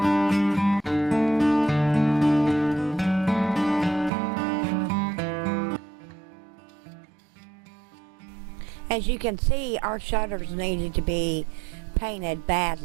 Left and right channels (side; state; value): left; drops out; at 4.1 s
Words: As you can see, our shutters needed to be painted